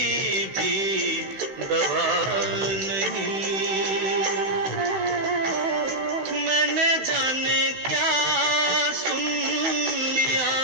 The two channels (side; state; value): left; late; 15 ms